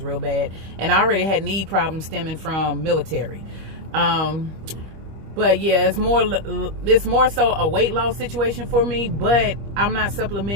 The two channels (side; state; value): left; late; 25 ms